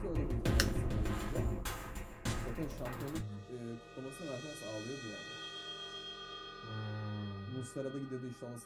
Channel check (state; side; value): identical; both; correlation 1.00